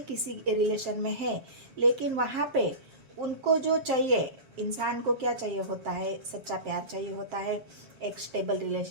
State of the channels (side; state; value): left; late; 7.5 ms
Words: किसी रिलेशन में है, लेकिन वहाँ पे उनको जो चाहिए, इंसान को क्या चाहिए होता है, सच्चा प्यार चाहिए होता है, एक स्टेबल